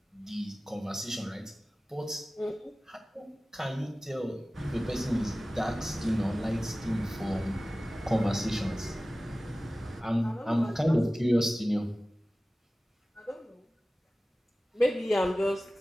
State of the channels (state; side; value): normal; both; correlation 0.97